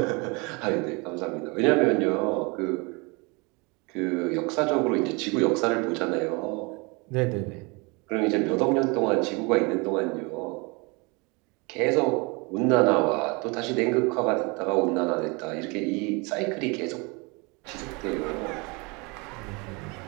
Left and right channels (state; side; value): quieter; left; 28.6 dB